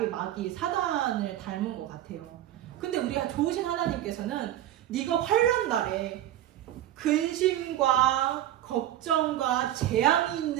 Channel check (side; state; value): left; quieter; 12.7 dB